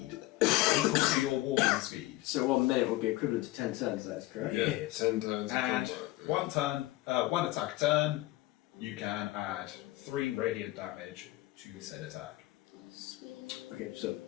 equal to your walking speed. So 1 minute would be equivalent to 10 turns, that's correct? Yeah, 10 times. And one attack turn, you can add 3 radiant damage to said attack. Okay, so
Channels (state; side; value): quieter; right; 18.0 dB